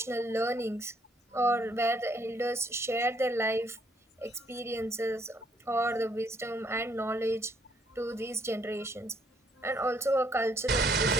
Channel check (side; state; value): both; normal; correlation 0.68